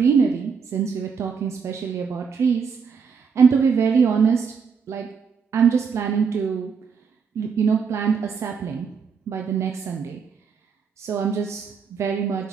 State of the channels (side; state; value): left; quieter; 6.0 dB